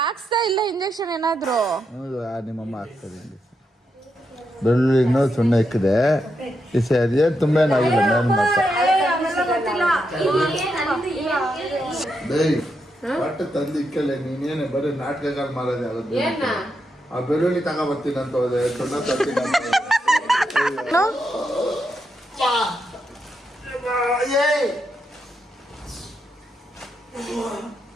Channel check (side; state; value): both; normal; correlation 0.83